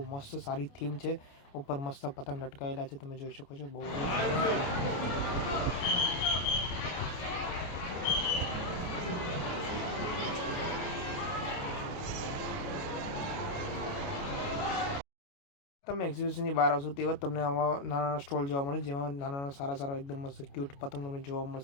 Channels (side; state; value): right; late; 29 ms